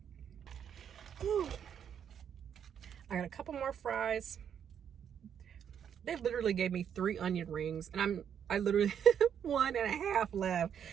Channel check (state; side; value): quieter; left; 8.5 dB